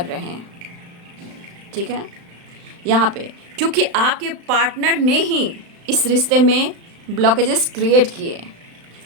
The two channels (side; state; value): left; late; 35 ms